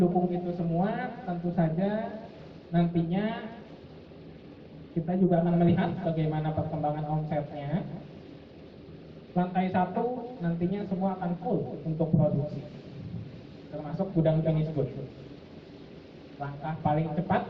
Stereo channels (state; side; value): identical; both; correlation 1.00